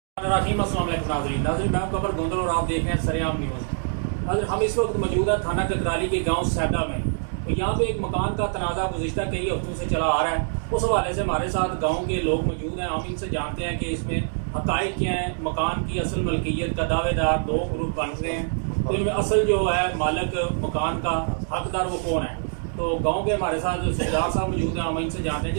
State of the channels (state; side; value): silent; left; 62 dB below the other